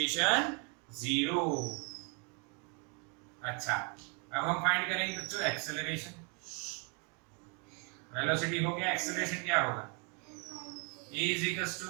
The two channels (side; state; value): left; quieter; 35.1 dB